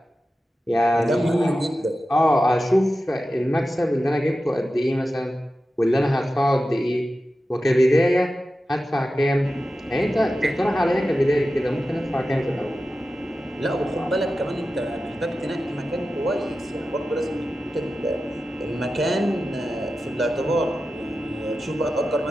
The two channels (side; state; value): both; normal; correlation 0.93